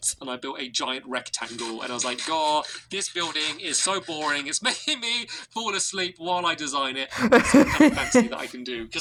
and I built a giant rectangle, and I was like, God, this building is so boring. It's making me fall asleep while I design it. It's something fancy that I can do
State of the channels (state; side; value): identical; both; correlation 1.00